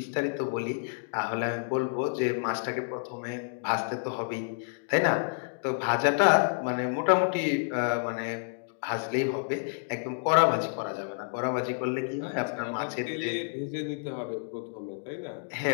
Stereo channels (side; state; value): right; silent; digital silence